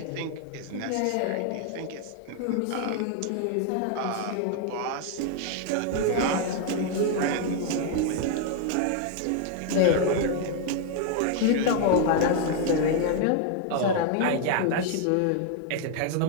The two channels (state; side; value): different; both; correlation 0.00